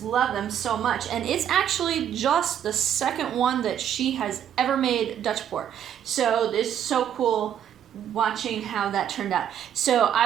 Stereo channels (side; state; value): left; quieter; 9.6 dB